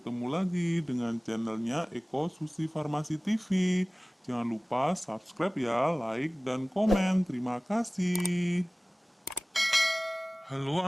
lagi dengan channelnya Eko Susi Farmasi TV. Jangan lupa subscribe ya, like dan komen. Terima kasih. Halo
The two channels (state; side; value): normal; both; correlation 0.98